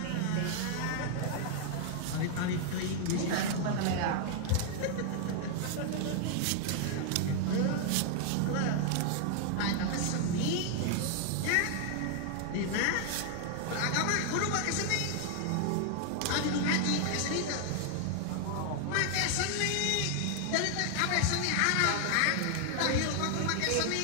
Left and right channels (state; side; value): different; both; correlation 0.00